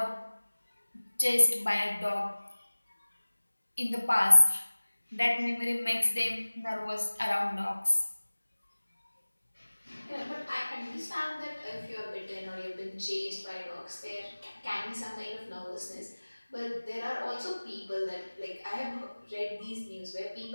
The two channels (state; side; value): inverted; both; correlation -1.00